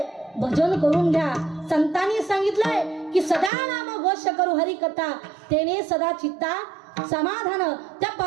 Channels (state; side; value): drops out; left; at 3.5 s